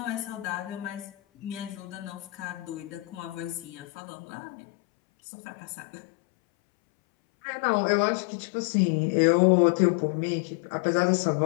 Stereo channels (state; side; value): drops out; right; at 3.9 s